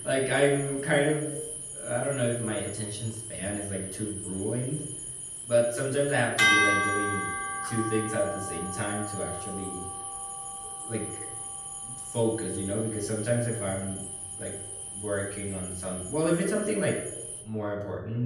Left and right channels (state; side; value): identical; both; correlation 1.00